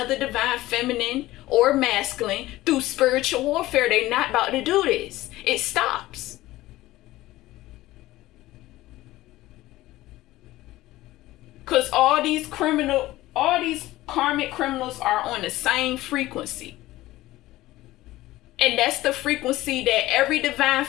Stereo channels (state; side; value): quieter; right; 16.9 dB